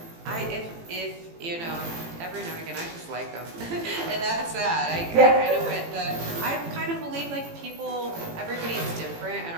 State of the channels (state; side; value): late; left; 18 ms